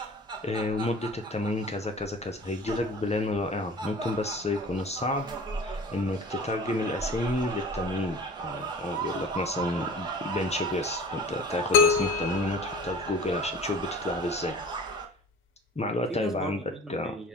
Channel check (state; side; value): normal; both; correlation 0.41